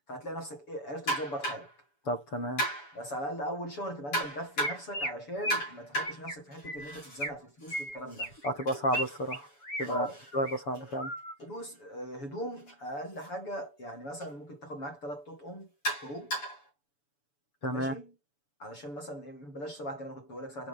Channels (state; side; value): late; right; 7.0 ms